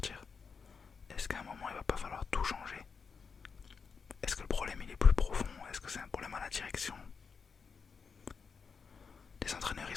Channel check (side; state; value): right; quieter; 5.6 dB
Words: Est-ce qu'à un moment il va pas falloir tout changer? Est-ce que le problème il est plus profond? Est-ce que c'est un problème à la direction? Les entraîneurs ils